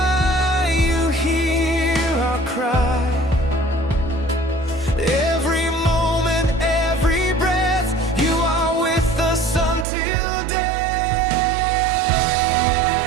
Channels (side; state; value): left; drops out; at 9.9 s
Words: you hear our cry. Every moment, every breath, you are with us until death.